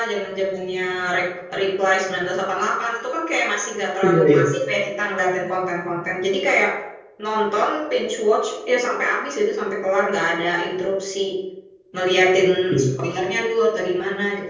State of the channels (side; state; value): both; identical; correlation 1.00